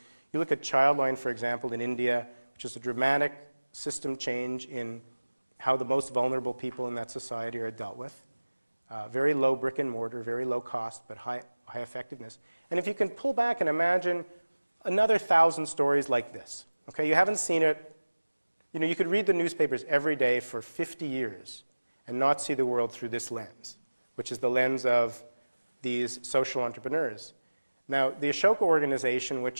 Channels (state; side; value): inverted; both; correlation -1.00